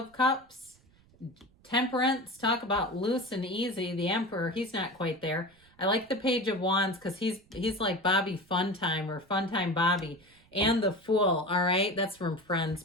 Cups, Temperance, talk about loose and easy. The Emperor, he's not quite there. I like the Page of Wands because he's like Bobby Funtime or Funtime Bobby. And the Fool, all right? That's from Friends,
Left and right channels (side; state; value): right; noise; rumble, 30 dB below the sound